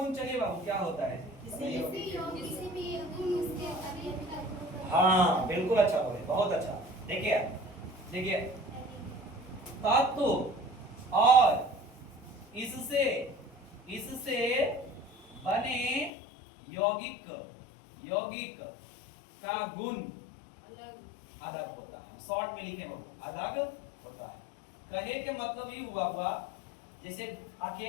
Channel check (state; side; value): drops out; right; at 16.1 s